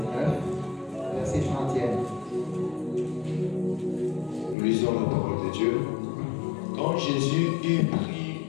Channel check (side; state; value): right; drops out; at 4.5 s